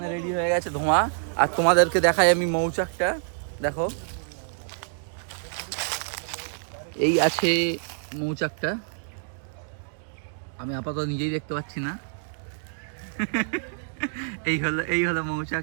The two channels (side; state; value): left; silent; digital silence